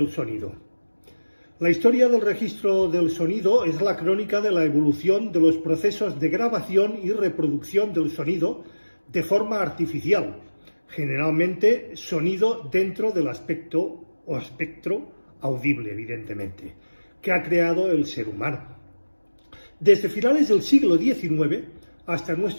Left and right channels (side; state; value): both; inverted; correlation -1.00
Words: sonido. La historia del registro del sonido es la crónica de la evolución de los procesos de grabación y reproducción del sonido de forma artificial, generalmente sonido dentro del aspecto o espectro audible, evidentemente, que ha creado el ser humano. Desde finales del siglo XIX hasta